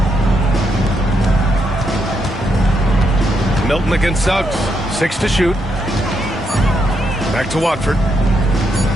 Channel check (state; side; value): normal; both; correlation 0.79